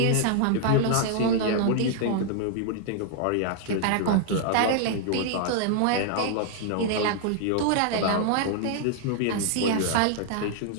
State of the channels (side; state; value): both; different; correlation -0.01